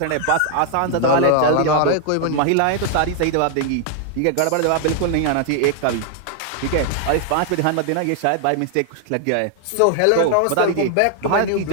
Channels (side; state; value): both; different; correlation 0.00